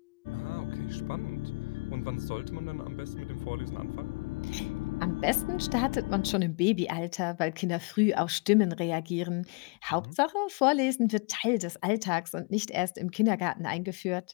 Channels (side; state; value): right; quieter; 30.9 dB